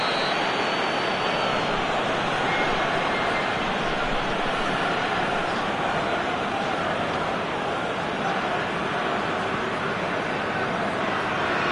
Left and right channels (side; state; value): both; identical; correlation 1.00